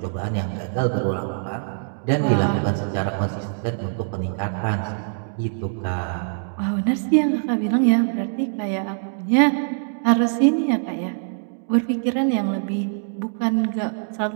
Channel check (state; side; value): silent; left; digital silence